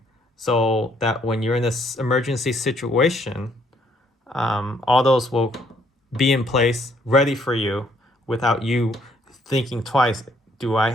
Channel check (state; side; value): normal; both; correlation 0.67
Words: so that when you're in this emergency situation, all those will be in place, ready for you, without you thinking twice. Do I